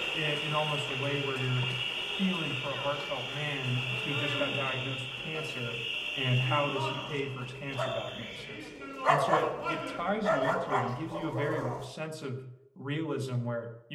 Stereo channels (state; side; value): identical; both; correlation 1.00